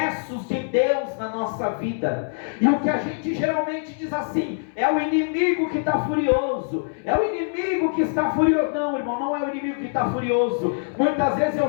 de Deus na nossa vida, e o que a gente geralmente diz assim: é o inimigo que está furioso, é o inimigo que está furioso. Não, irmão, não é o inimigo que está furioso. Muitas vezes é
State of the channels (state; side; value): silent; right; 61 dB below the other